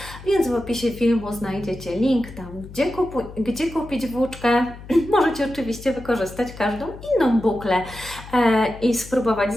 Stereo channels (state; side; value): noise; left; hum, 16 dB below the sound